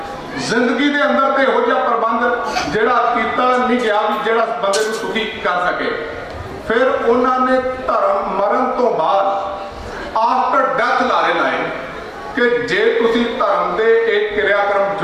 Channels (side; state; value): both; identical; correlation 1.00